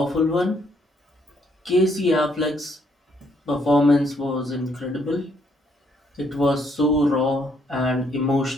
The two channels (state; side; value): normal; both; correlation 0.70